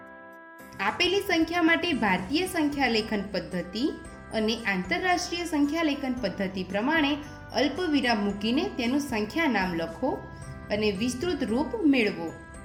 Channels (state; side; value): identical; both; correlation 1.00